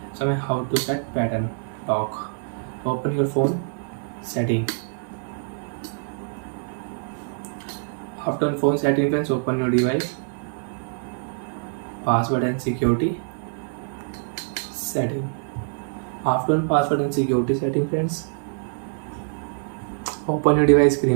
So how to set pattern lock. Open your phone setting. After phone setting friends, open your device, password and security setting. After password and security setting friends, open your device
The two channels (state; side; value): silent; left; digital silence